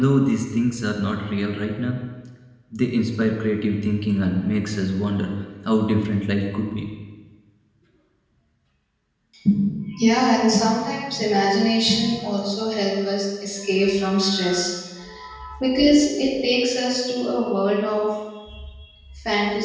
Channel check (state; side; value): identical; both; correlation 1.00